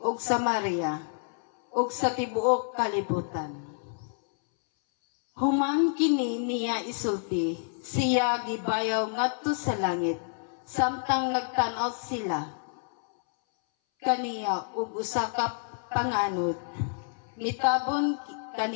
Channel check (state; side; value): silent; right; 59 dB below the other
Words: Samaria ug sa tibuok kalibutan. Human kini niya isulti, siya gibayaw ngadto sa langit, samtang nagtan-aw sila kaniya ug usa ka panganod, mitabon